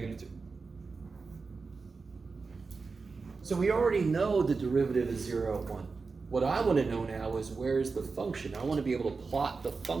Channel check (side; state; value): left; quieter; 4.4 dB